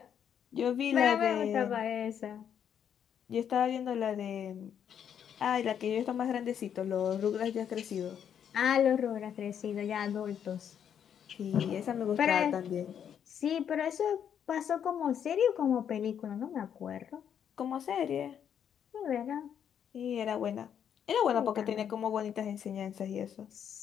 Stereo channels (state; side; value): quieter; right; 8.6 dB